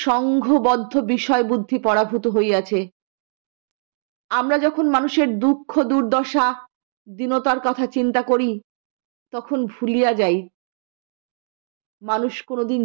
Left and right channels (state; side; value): silent; left; digital silence